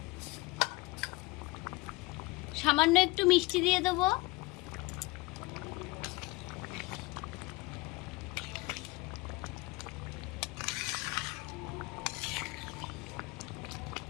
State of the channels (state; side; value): quieter; right; 22.8 dB